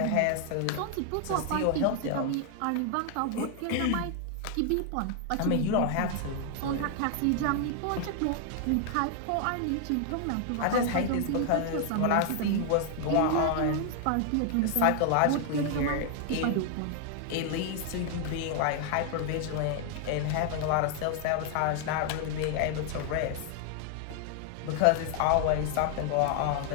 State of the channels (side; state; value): both; different; correlation 0.00